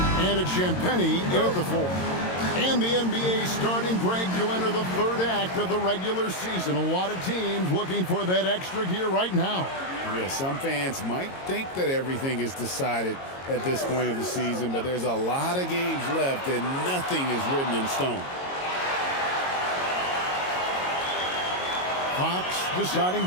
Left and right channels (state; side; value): late; right; 22 ms